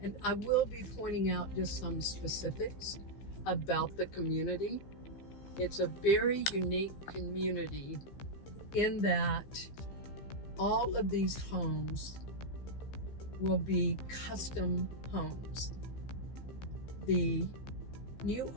and I will be pointing out just some specifics about the community. It's a very unique community in that all of these homes will be custom homes. The new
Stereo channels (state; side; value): late; right; 15 ms